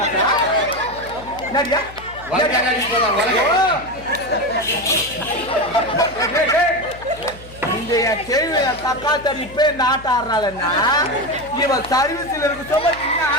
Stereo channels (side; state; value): left; noise; hum, 18 dB below the sound